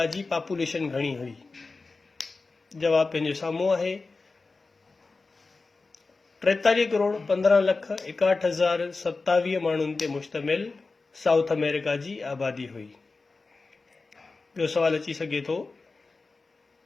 जी पॉपुलेशन घणी हुई? जवाब पंहिंजे साम्हूं आहे। 43 करोड़ 15 लख 61,027 माण्हुनि ते मुश्तमिल साउथ अमेरिका जी आबादी हुई। ॿियो सवाल अची सघे थो,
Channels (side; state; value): right; quieter; 3.9 dB